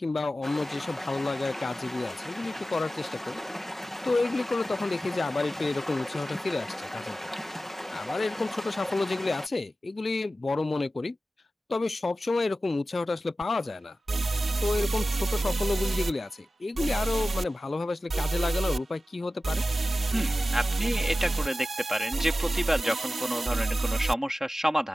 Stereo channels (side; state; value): both; normal; correlation 0.95